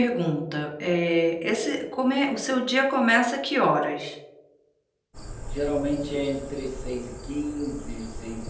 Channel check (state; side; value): identical; both; correlation 1.00